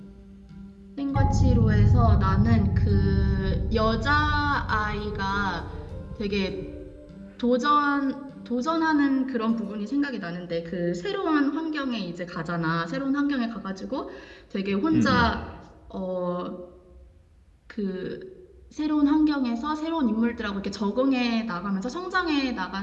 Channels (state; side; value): identical; both; correlation 1.00